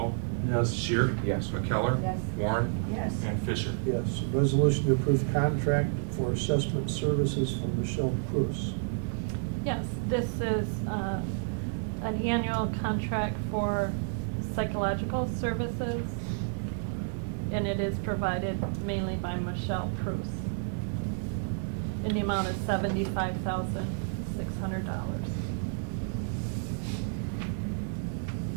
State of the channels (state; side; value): silent; left; digital silence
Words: Yes. Shear? Yes. McKellar? Yes. Warren? Yes. And Fisher? Yes, resolution to approve contract for assessment services for Michelle Prus. Yes, this is an annual contract for psychological services, and it is provided mainly by Michelle Prus. And the amount is $75,600.